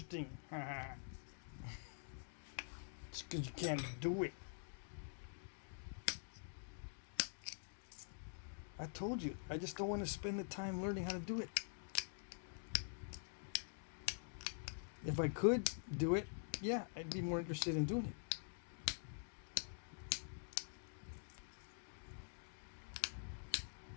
It's because you can't do it. I told you, I just don't want to spend the time learning how to do it. If I could do it, yeah, I'd be more interested in doing it.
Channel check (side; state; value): right; silent; digital silence